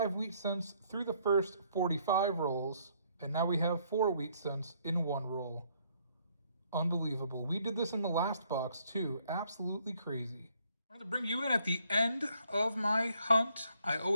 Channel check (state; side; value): inverted; both; correlation -0.68